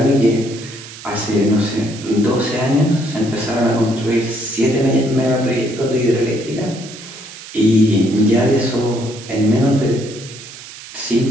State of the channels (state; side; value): noise; right; hiss, 15 dB below the sound